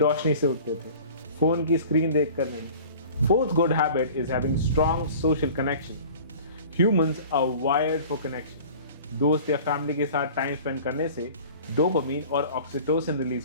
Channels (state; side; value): inverted; both; correlation -0.43